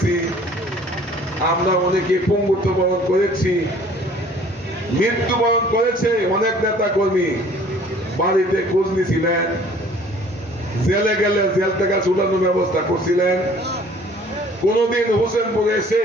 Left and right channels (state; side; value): normal; both; correlation 0.53